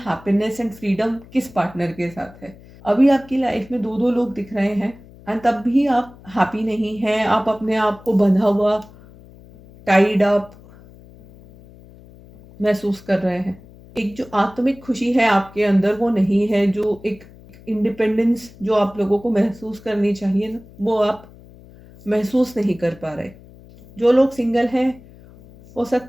एंड फ्रीडम किस पार्टनर के साथ है। अभी आपकी लाइफ में दो दो लोग दिख रहे हैं एंड तब भी आप हैप्पी नहीं हैं। आप अपने आप को बंधा हुआ, टाइड अप महसूस कर रहे हैं। एक जो आत्मिक खुशी है आपके अंदर वो नहीं है, जो एक इंडिपेंडेंस जो आप लोगों को महसूस करनी चाहिए ना, वो आप महसूस नहीं कर पा रहे। जो लोग सिंगल हैं हो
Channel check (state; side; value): noise; left; hum, 22 dB below the sound